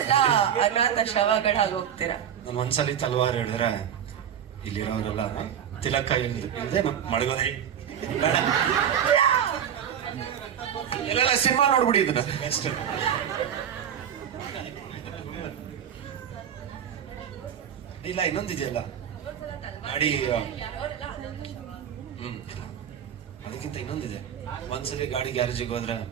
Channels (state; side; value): quieter; left; 9.1 dB